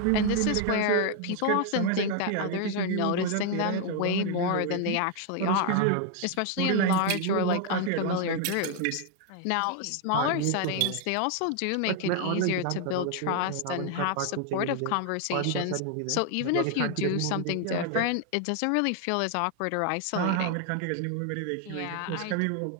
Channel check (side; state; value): both; different; correlation 0.00